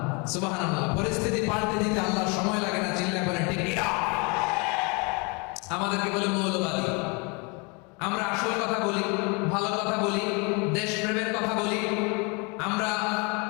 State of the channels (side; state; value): right; quieter; 31.1 dB